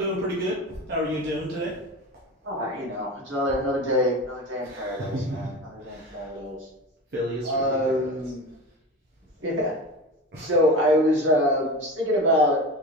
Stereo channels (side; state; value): both; normal; correlation 0.29